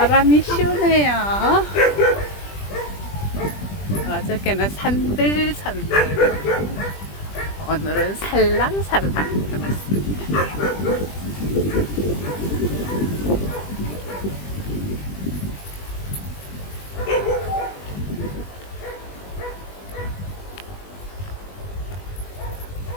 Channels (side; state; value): right; late; 20 ms